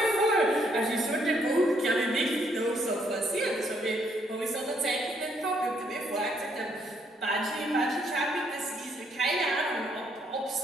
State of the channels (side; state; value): both; normal; correlation 0.71